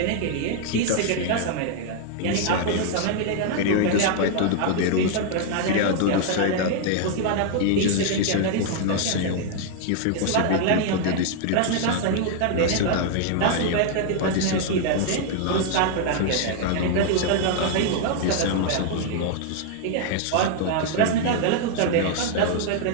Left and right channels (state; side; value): different; both; correlation 0.00